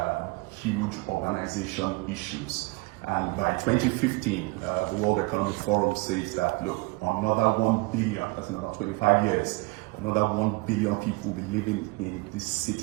huge urbanization issues. And by 2015, the World Economic Forum says that, look, another 1 billion, that's in about 25 years, another 1 billion people will be living in these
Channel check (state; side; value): quieter; left; 25.7 dB